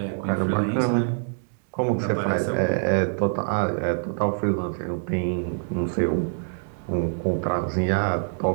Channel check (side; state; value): left; silent; digital silence